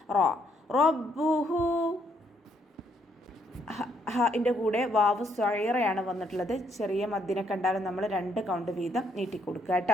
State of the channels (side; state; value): both; normal; correlation 0.72